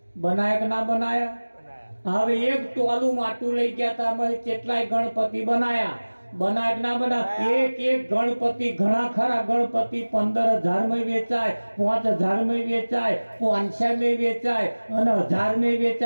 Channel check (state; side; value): inverted; both; correlation -1.00